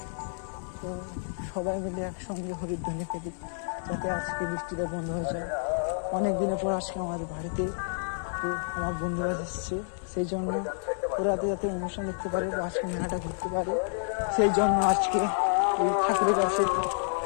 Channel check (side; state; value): right; silent; digital silence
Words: তো সবাই মিলে একসঙ্গে হরিধ্বনি ফেলি যাতে আজকে বৃষ্টিতে বন্ধ হয়ে যায়। অনেক দিনের পর আজকে আমাদের বাড়িতে আমার বন্ধুবাস এসছে, সেই জন্য ওরাতে যাতে অনুষ্ঠান দেখতে পারে বা আজকে মেলাটা ঘুরতে পারে, সেই জন্য আজকে এই ঠাকুরের কাছে